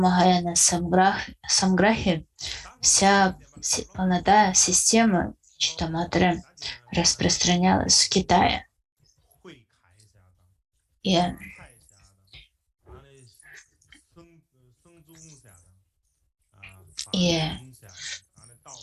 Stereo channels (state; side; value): identical; both; correlation 1.00